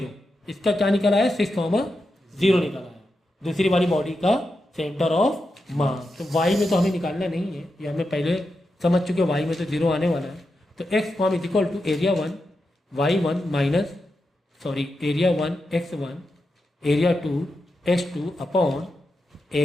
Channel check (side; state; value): both; normal; correlation 0.88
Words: इसका क्या निकला है? 6,0 निकला है, दूसरी वाली बॉडी का सेंटर ऑफ मास। तो वाई में तो हमें निकालना नहीं है, ये हमें पहले समझ चुके, वाई में तो 0 आने वाला है। तो X form is equal to area 1 y1 minus area 1 x1 area 2 x2 upon